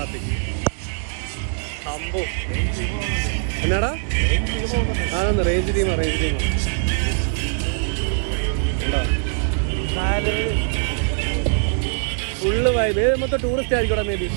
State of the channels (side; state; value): left; silent; digital silence